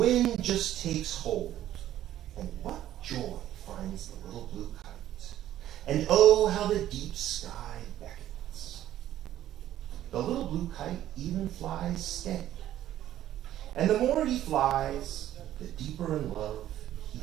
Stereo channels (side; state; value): left; quieter; 12.6 dB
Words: just takes hold, and what joy finds the little blue kite. And oh, how the deep sky beckons. The little blue kite even flies steady. And the more he flies, the deeper in love he